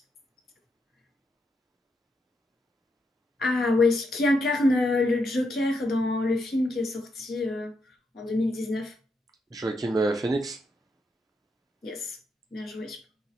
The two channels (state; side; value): normal; both; correlation 0.81